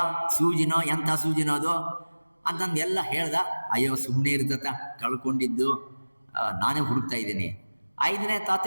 ಸೂಜಿನೋ ಎಂಥ ಸೂಜಿನೋ ಅದು ಅಂತಂದು ಎಲ್ಲ ಹೇಳ್ದ. ಅಯ್ಯೋ, ಸುಮ್ಮನೆ ಇರ್ತತ, ಕಳ್ಕೊಂಡಿದ್ದು ನಾನೇ ಹುಡುಕ್ತಾ ಇದ್ದೀನಿ. 5ನೇ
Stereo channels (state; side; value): inverted; both; correlation -1.00